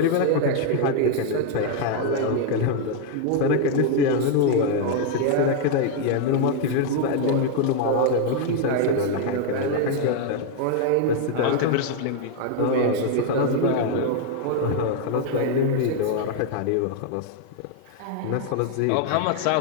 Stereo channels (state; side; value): different; both; correlation 0.00